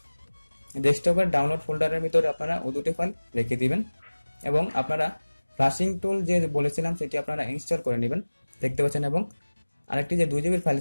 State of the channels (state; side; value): inverted; both; correlation -1.00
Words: ডেস্কটপের ডাউনলোড ফোল্ডারের ভিতরে আপনারা ও দুটি ফাইল রেখে দিবেন এবং আপনারা ফ্ল্যাশিং টুল যে বলেছিলাম সেটি আপনারা ইনস্টল করে নেবেন। দেখতে পাচ্ছেন এবং আরেকটি যে 2 GB ফাইল